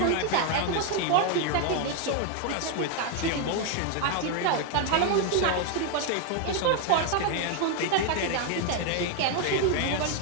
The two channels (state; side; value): different; both; correlation 0.01